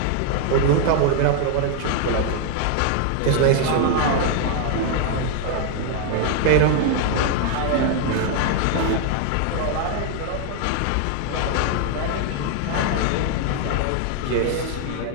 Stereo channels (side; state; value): both; different; correlation 0.00